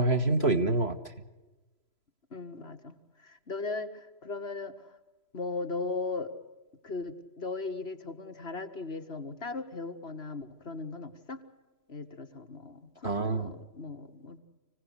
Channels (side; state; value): right; late; 3.0 ms